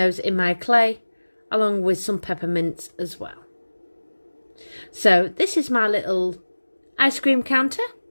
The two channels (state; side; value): inverted; both; correlation -1.00